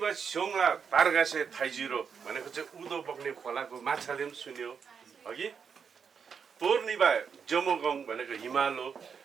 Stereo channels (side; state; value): left; quieter; 6.5 dB